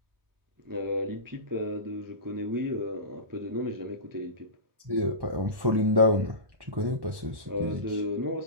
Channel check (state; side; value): late; left; 1.1 ms